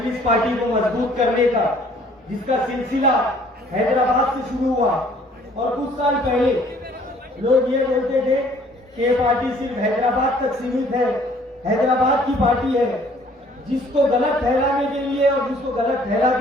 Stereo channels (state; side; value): normal; both; correlation 0.57